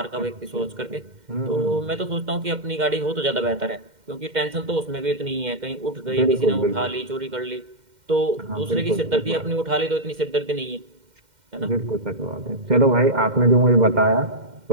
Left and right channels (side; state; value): left; late; 2.1 ms